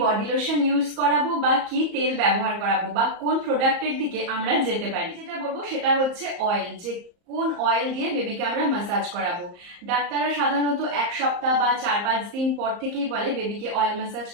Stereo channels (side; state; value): left; late; 34 ms